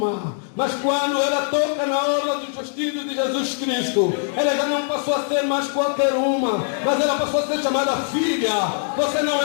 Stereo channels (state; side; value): silent; right; 64 dB below the other